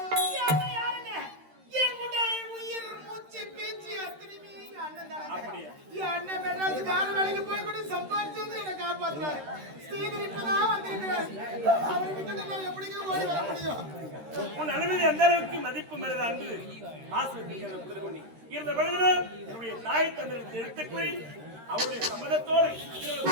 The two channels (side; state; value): left; late; 13 ms